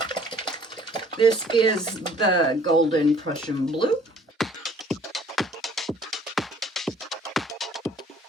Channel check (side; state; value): both; normal; correlation 0.56